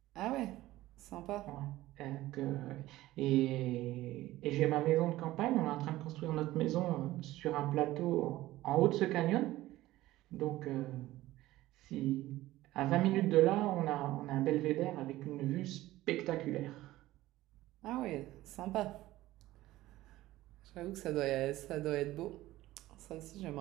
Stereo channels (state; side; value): quieter; left; 16.4 dB